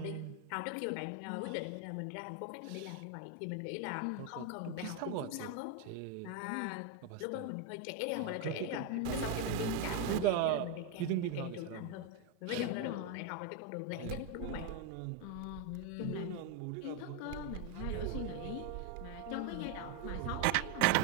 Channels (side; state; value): both; different; correlation 0.02